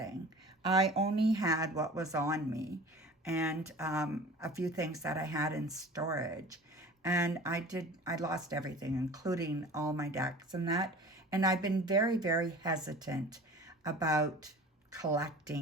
I only had what was on me and a few things that I had in storage. And I lost everything, including all my decks and that. And I've been very, very hesitant about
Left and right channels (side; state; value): both; normal; correlation 0.41